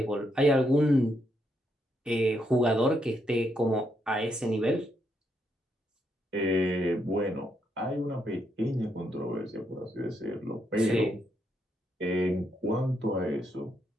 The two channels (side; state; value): both; normal; correlation 0.78